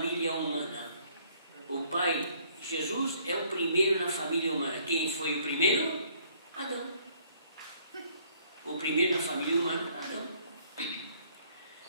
humana. O pai, Jesus, é o primeiro na família humana. Quem foi o primeiro? Adão. O primeiro na família humana, Adão.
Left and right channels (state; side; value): inverted; both; correlation -0.63